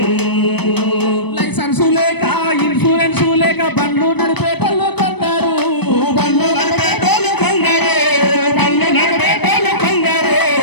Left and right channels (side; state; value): right; late; 0.98 ms